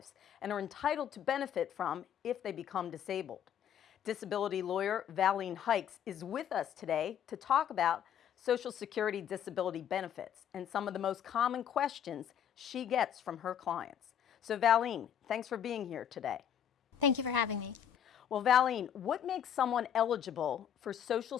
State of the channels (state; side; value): quieter; right; 9.2 dB